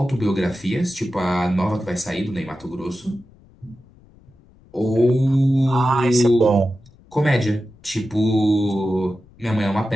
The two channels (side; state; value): left; noise; rumble, 27 dB below the sound